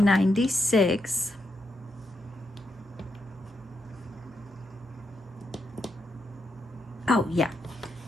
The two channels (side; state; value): both; normal; correlation 0.82